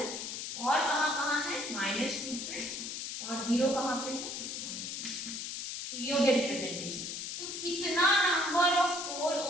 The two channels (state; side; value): noise; left; hiss, 6 dB below the sound